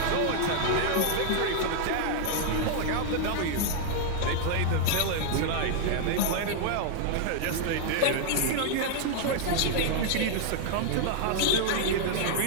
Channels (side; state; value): both; different; correlation -0.01